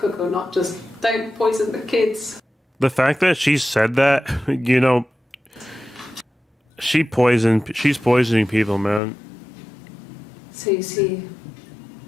or not, just don't poison the kids. The fact that she said that, you know, she's poisoning people, man. So you see,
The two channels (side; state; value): right; drops out; at 9.0 s